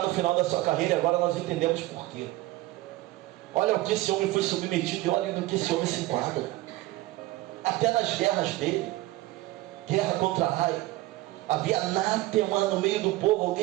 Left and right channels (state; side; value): quieter; left; 18.1 dB